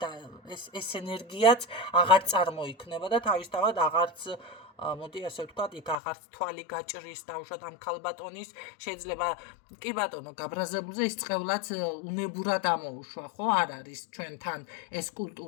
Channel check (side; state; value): right; drops out; at 6.0 s